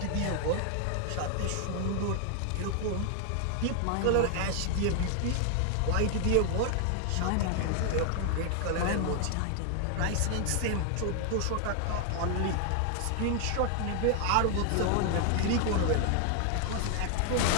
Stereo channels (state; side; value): different; both; correlation 0.00